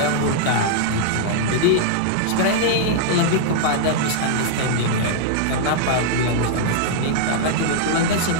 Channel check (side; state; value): both; different; correlation -0.01